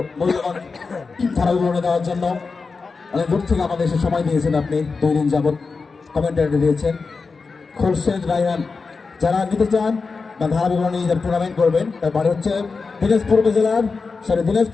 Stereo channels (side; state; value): right; quieter; 4.5 dB